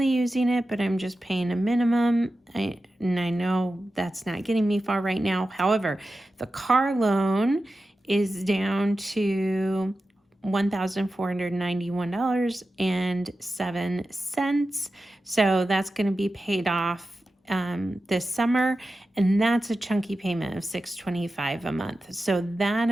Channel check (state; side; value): normal; both; correlation 0.93